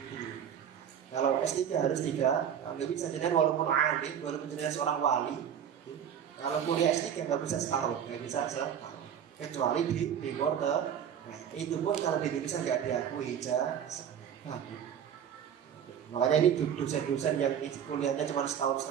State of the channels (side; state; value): left; quieter; 8.8 dB